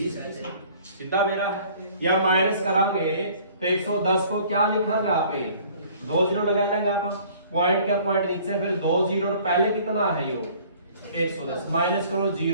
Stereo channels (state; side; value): inverted; both; correlation -0.53